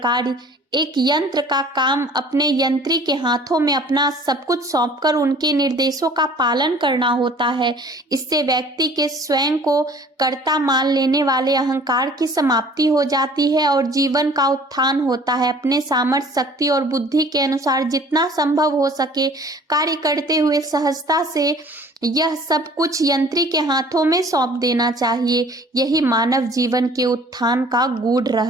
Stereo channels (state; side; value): normal; both; correlation 0.51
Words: एक यंत्र का काम अपने यंत्री के हाथों में अपना सब कुछ सौंपकर उनके निर्देशों का पालन करना होता है, इससे व्यक्ति के स्वयं को कर्ता मान लेने वाले अहंकार की समाप्ति हो जाती है और जीवन का उत्थान होता है। अपने सामर्थ्य, शक्ति और बुद्धि के अनुसार जितना संभव हो सके कार्य करते हुए सहजता से यह सब कुछ यंत्री के हाथों में सौंप देना चाहिए। यही मानव जीवन के उत्थान का गूढ़